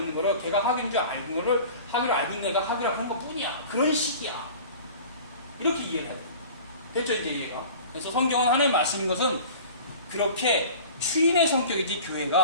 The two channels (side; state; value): both; inverted; correlation -0.41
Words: 거를 걔가 하교인 줄 알고 있는 거를 하교를 알고 있는 애가 하교라고 하는 것 뿐이야. 그런 식이야. 이렇게 이해를 해야 돼. 됐죠 이제 이해가? 그래서 성경은 하나님의 말씀인 것은 그렇게 추인의 성격이지